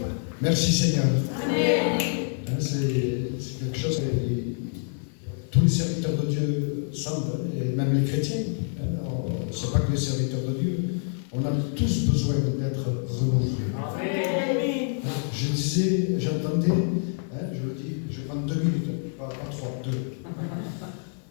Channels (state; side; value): silent; right; 60 dB below the other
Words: Merci Seigneur. C'est quelque chose que tous les serviteurs de Dieu sentent, et même les chrétiens. Ce n'est pas que les serviteurs de Dieu. On a tous besoin d'être renouvelés. Je disais, j'entendais, je le dis, je prends 2 minutes, pas 3, 2.